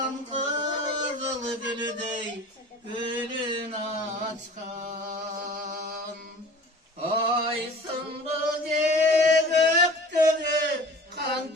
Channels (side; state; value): both; normal; correlation 0.43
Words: kızıl gülüdey gülün açkan aysın bu göktörü kan